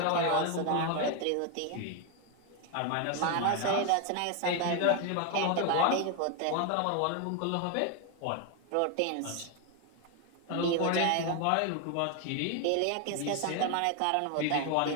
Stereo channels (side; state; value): both; different; correlation 0.01